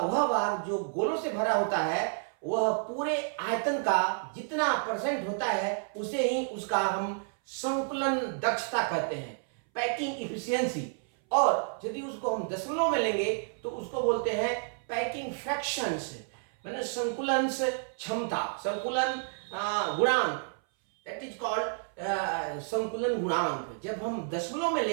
भाग जो गोलों से भरा होता है वह पूरे आयतन का जितना परसेंट होता है उसे ही उसका हम संकुलन दक्षता कहते हैं, पैकिंग इफिशियंसी। और यदि उसको हम दशमलव में लेंगे तो उसको बोलते हैं पैकिंग फ्रैक्शंस, मैंने संकुलन क्षमता, संकुलन गुणांक, दैट इज कॉल्ड संकुलन गुणांक। जब हम दशमलव में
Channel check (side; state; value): left; silent; 58 dB below the other